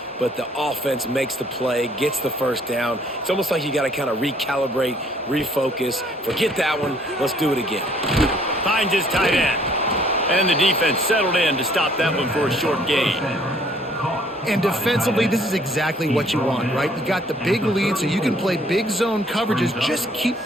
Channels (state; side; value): normal; both; correlation 0.61